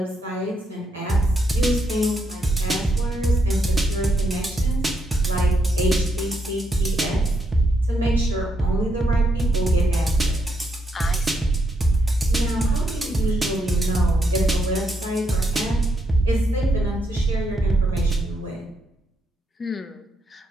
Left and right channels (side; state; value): both; normal; correlation 0.78